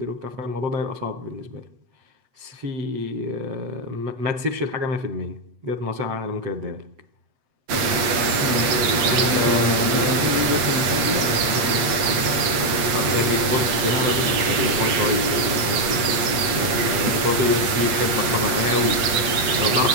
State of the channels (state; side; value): late; left; 8.0 ms